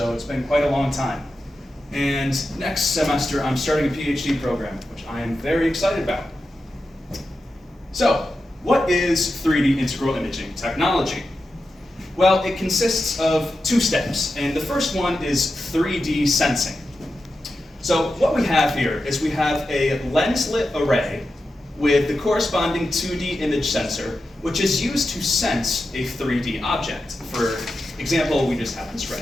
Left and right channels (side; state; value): both; normal; correlation 0.90